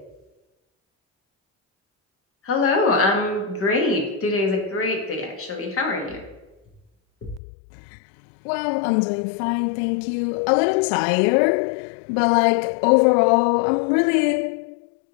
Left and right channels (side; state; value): right; drops out; at 7.4 s